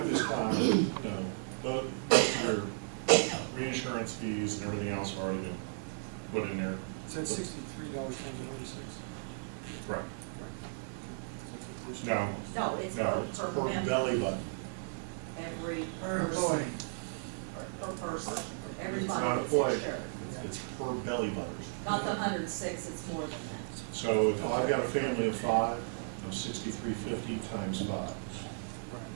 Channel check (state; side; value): silent; left; digital silence